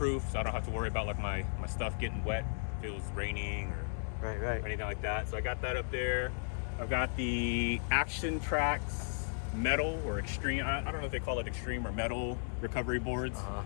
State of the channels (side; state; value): right; silent; digital silence